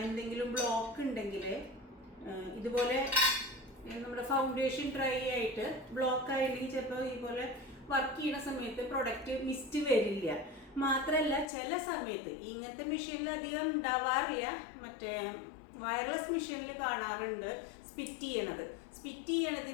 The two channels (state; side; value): drops out; right; at 11.5 s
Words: എന്തെങ്കിലും ബ്ലോക്ക് ഉണ്ടെങ്കിൽ ഇതുപോലെ നമ്മുടെ ഫൗണ്ടേഷൻ ഡ്രൈ ആയിട്ട് ബ്ലോക്ക് ആയില്ലെങ്കിൽ ചിലപ്പോൾ ഇതുപോലെ വർക്ക് ചെയ്യുന്ന സമയത്ത് പ്രൊഡക്റ്റ് മിസ്റ്റ് വരില്ല. മാത്രമല്ല ചില സമയത്ത് ഇങ്ങനത്തെ മെഷീനിൽ അധികം ഉണ്ടാവാറില്ല, മറ്റേ വയർലെസ് മെഷീനിൽ കാണാറുണ്ട് സ്പിറ്റ്